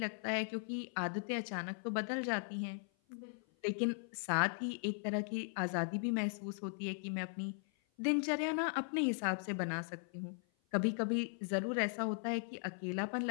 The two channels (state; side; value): silent; right; 52 dB below the other